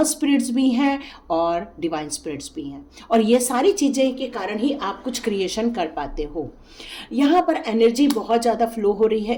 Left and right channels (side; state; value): both; identical; correlation 1.00